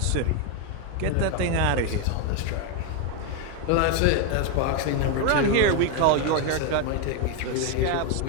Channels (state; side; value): different; both; correlation 0.01